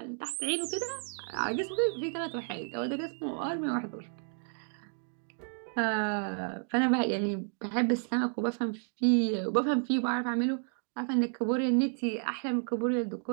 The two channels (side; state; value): left; silent; 57 dB below the other